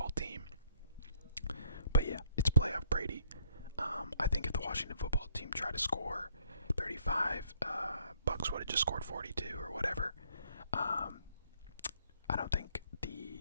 team. But yeah, it's playoff Brady. I think if the Washington football team tried to score 35, Bucks would have just scored 42 or whatever. I don't think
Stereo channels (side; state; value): both; inverted; correlation -0.67